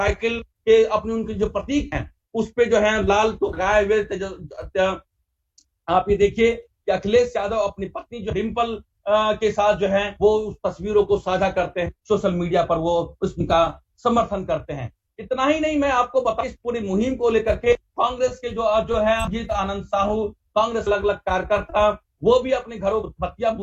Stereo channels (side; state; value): both; identical; correlation 1.00